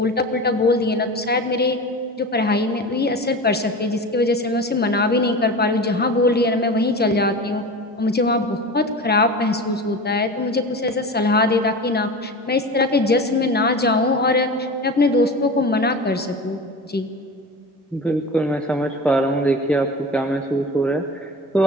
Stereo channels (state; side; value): normal; both; correlation 0.31